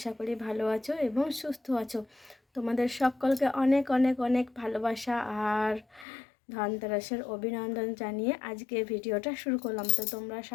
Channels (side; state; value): right; drops out; at 6.1 s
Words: করি ভালো আছো এবং সুস্থ আছো। তোমাদের সকলকে অনেক অনেক অনেক ভালোবাসা আর ধনতেরাসের অভিনন্দন জানিয়ে আজকে ভিডিওটা শুরু করলাম। তো তোমরা